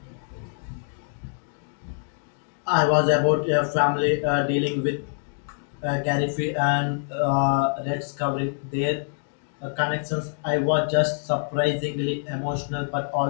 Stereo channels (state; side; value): silent; right; digital silence